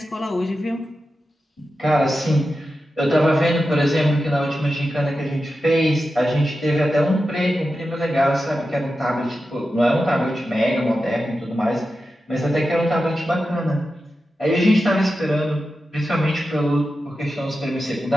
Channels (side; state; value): both; normal; correlation 0.91